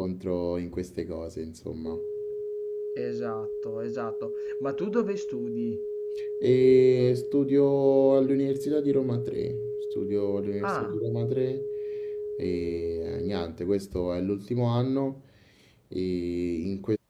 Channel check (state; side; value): identical; both; correlation 1.00